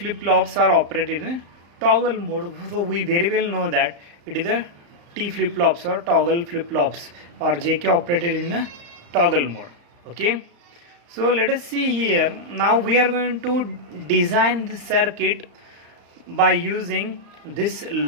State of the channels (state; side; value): late; left; 35 ms